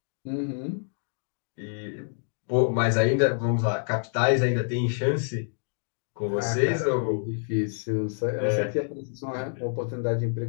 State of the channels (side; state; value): right; silent; digital silence